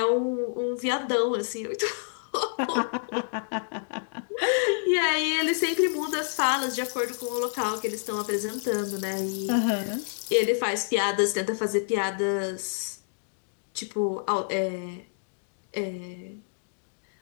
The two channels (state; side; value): silent; right; digital silence